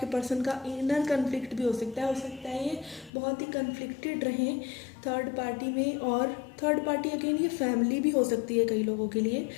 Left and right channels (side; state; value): right; drops out; at 3.1 s